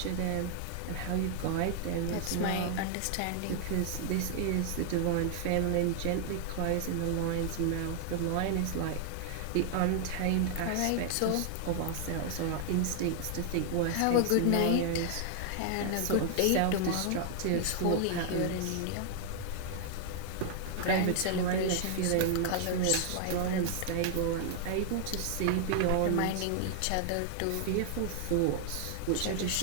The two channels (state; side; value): different; both; correlation 0.00